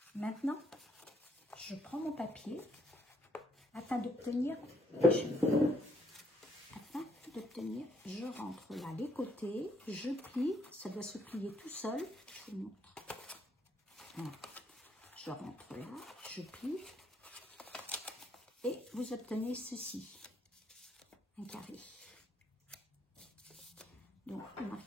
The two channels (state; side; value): normal; both; correlation 0.70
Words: Maintenant, je prends mon papier afin d'obtenir, je rentre là les côtés, je plie, ça doit se plier tout seul, je vous montre. Voilà. Je rentre là, je plie. Et vous obtenez ceci, un carré. Donc, vous